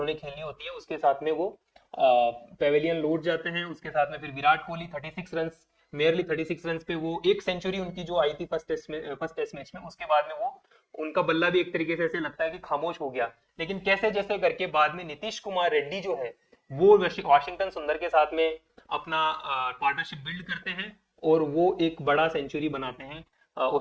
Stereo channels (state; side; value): identical; both; correlation 1.00